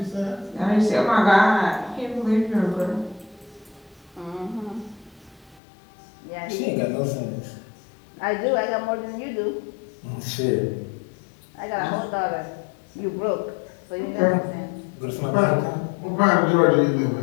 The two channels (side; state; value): right; drops out; at 5.6 s